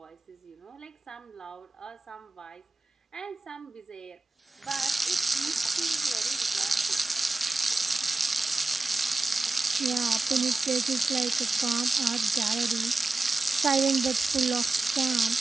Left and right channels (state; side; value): quieter; left; 3.3 dB